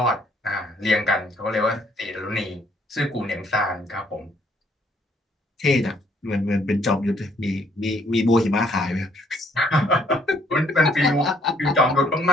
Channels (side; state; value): both; normal; correlation 0.65